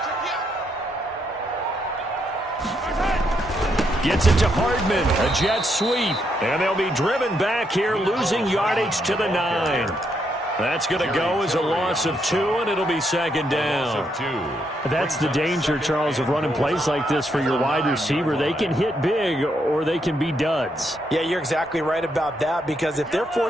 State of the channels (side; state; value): both; normal; correlation 0.77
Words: Gets it to Hardman, a jet sweep, and they'll be driven back here, losing yardage to the 9. That's going to go as a loss of 2, and it'll be 2nd down. That's the danger, Charles, of running plays like this for your wide receiver. They can hit big, or they can be duds. Yeah, you're exactly right about that, because if they're